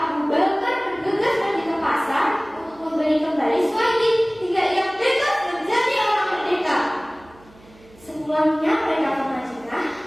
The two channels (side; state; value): right; noise; hum, 26 dB below the sound